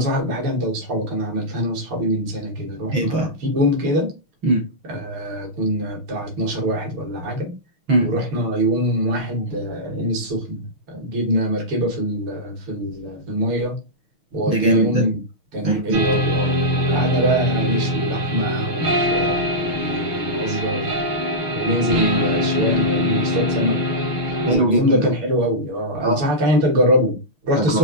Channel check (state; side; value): late; left; 6.3 ms